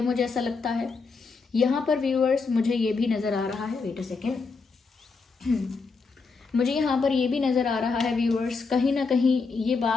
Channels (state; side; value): quieter; right; 4.5 dB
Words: मुझे ऐसा लगता है। यहाँ पर व्यूअर्स मुझे ये भी नज़र आ रहा है, वेट अ सेकेंड, मुझे यहाँ पर ये भी नज़र आ रहा है व्यूअर्स, कहीं ना कहीं ये